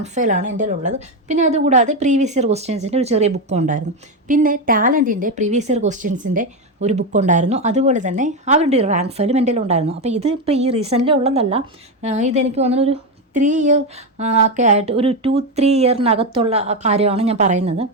ഫയലാണ് എൻ്റെ കയ്യിലുള്ളത്. പിന്നെ അതുകൂടാതെ പ്രീവിയസ് ഇയർ ക്വസ്റ്റ്യൻസിൻ്റെ ഒരു ചെറിയ ബുക്കും ഉണ്ടായിരുന്നു. പിന്നെ ടാലൻറ്റിൻ്റെ പ്രീവിയസ് ഇയർ ക്വസ്റ്റ്യൻസിൻ്റെ ഒരു ബുക്കുണ്ടായിരുന്നു. അതുപോലെ തന്നെ അവരുടെ ഒരു റാങ്ക് ഫയലും എൻ്റെ കയ്യിലുണ്ടായിരുന്നു. അപ്പോൾ ഇത് ഇപ്പോൾ ഈ റീസെൻ്റ്ലി ഉള്ളതല്ല, ഇതെനിക്ക് തോന്നുന്നു ഒരു 3 ഇയർ ഒക്കെ ആയിട്ട്, ഒരു 2-3 ഇയറിനകത്തുള്ള കാര്യമാണ് ഞാൻ പറയുന്നത്.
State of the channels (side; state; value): both; normal; correlation 0.10